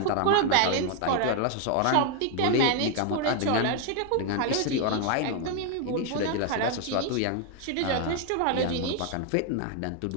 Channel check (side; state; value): both; different; correlation 0.01